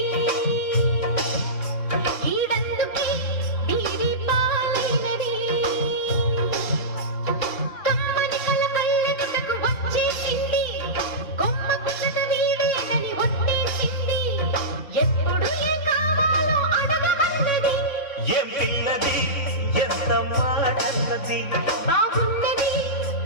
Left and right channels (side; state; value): right; late; 3.7 ms